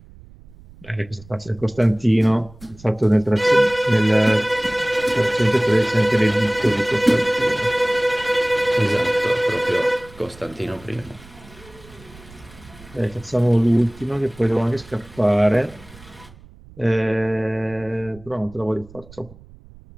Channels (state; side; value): noise; right; rumble, 22 dB below the sound